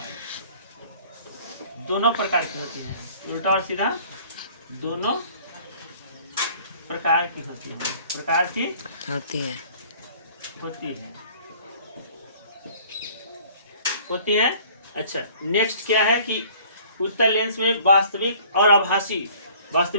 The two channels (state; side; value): inverted; both; correlation -0.53